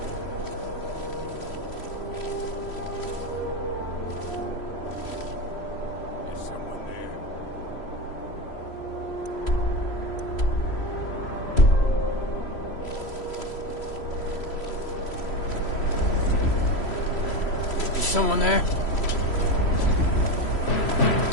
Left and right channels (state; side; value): late; right; 3.1 ms